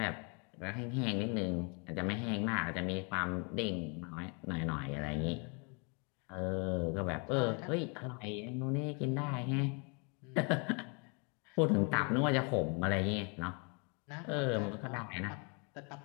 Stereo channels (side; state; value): right; quieter; 34.2 dB